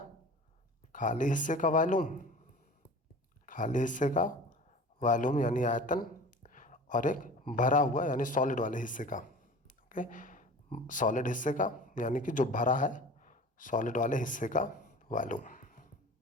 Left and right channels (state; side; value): normal; both; correlation 0.40